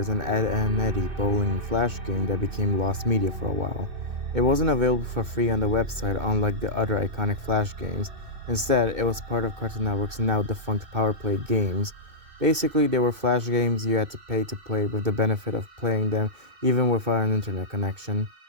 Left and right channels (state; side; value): late; left; 2.6 ms